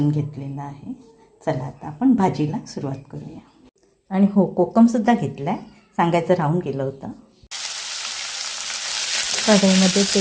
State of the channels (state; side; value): identical; both; correlation 1.00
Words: घेतलेला आहे। चला आता आपण भाजीला सुरुवात करूया। आणि हो, कोकम सुद्धा घेतलाय, सांगायचं राहून गेलं होतं। कढईमध्ये